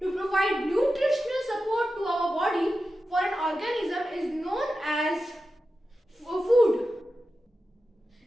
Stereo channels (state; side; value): normal; both; correlation 0.92